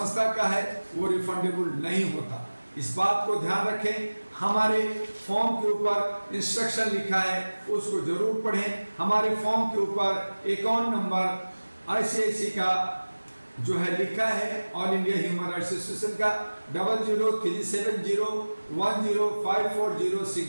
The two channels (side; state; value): both; inverted; correlation -1.00